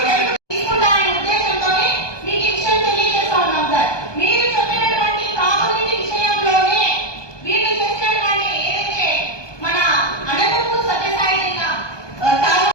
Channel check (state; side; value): late; right; 1.2 ms